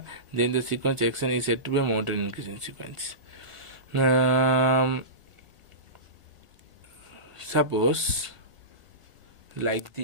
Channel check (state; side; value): late; left; 1.6 ms